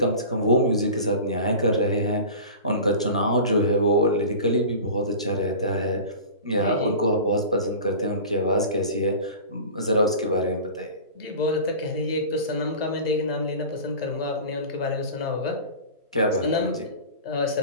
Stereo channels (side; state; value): both; inverted; correlation -0.35